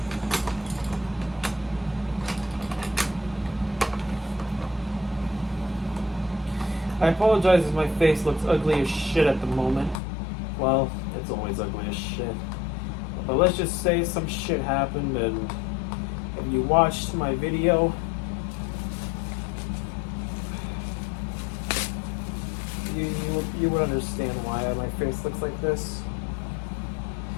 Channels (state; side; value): drops out; right; at 10.0 s